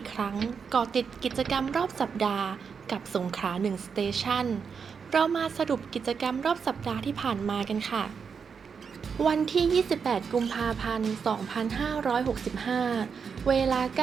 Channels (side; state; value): left; quieter; 6.1 dB